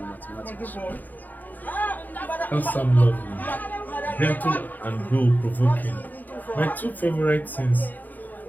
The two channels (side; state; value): right; late; 0.086 ms